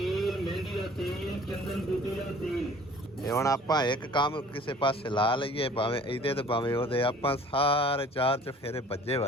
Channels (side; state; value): both; normal; correlation 0.50